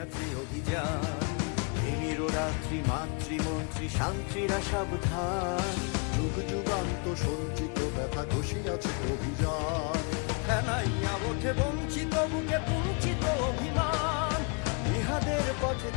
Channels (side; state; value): right; quieter; 36.5 dB